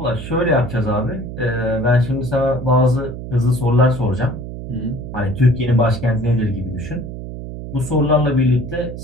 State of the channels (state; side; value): noise; right; hum, 9 dB below the sound